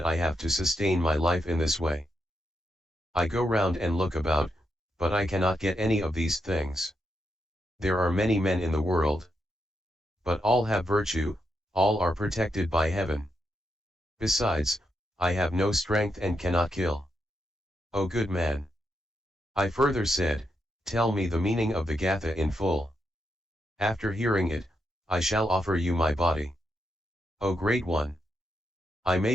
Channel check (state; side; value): normal; both; correlation 0.82